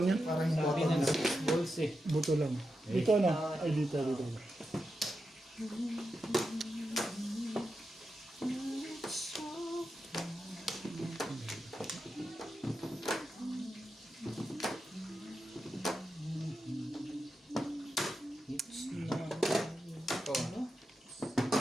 yan. Parang yung Sabi bottom ng na. 6 balls eh. Buto lang. Dito na. Ay, dito. It's not. Ikaw. Ano?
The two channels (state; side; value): normal; both; correlation 0.88